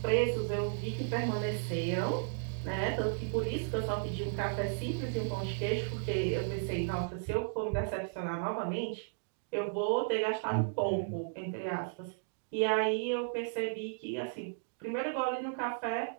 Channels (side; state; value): left; silent; digital silence